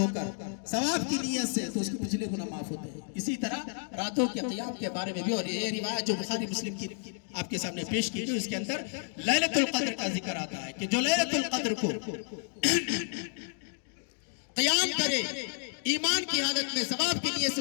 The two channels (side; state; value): right; silent; 57 dB below the other